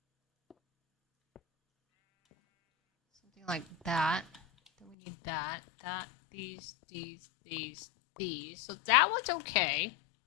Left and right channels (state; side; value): drops out; right; at 5.0 s